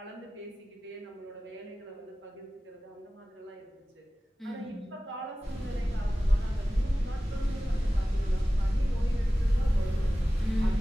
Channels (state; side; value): normal; both; correlation 0.97